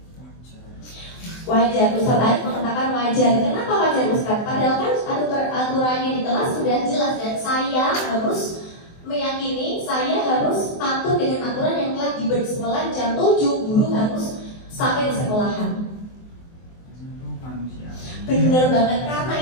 Wajar. Ustaz Arif mengatakan wajar. Kenapa wajar Ustaz? Padahal kan aturannya di kelas sudah jelas dan saya harus meyakini saya harus patuh dengan aturan yang telah diberi sekolah jam 7 guru harus sampai di sekolahan. Bener banget, karena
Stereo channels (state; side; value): late; right; 24 ms